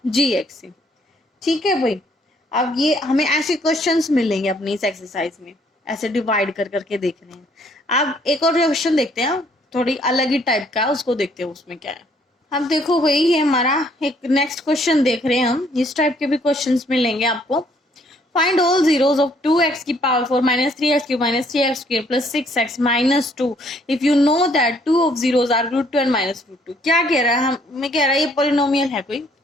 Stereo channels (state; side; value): normal; both; correlation 0.65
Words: जी एक्स से, ठीक है भाई। अब ये हमें ऐसे क्वेश्चंस मिलेंगे अपनी इस एक्सरसाइज में, ऐसे डिवाइड कर करके देख रहे हैं। अब एक और क्वेश्चन देखते हैं, थोड़ी अलग ही टाइप का, उसको देखते हैं उसमें क्या है। अब देखो भाई, ये हमारा एक नेक्स्ट क्वेश्चन देख रहे हैं हम, इस टाइप के भी क्वेश्चंस मिलेंगे आपको। Find all zeros of 2x की power 4 minus 3x cube minus 3x square plus 6x minus 2 if you know that 2 of zeros are √2 and minus √2। क्या कह रहा है, हमें कह रहा है ये पॉलिनोमियल है कोई